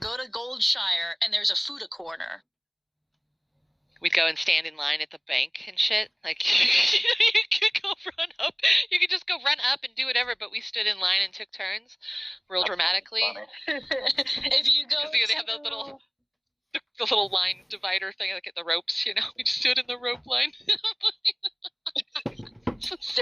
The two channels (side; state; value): both; identical; correlation 1.00